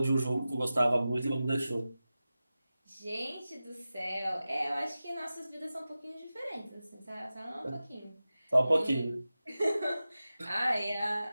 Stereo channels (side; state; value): both; inverted; correlation -0.95